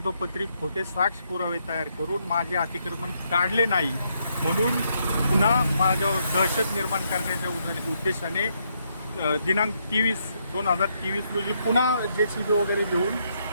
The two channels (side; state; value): both; inverted; correlation -0.76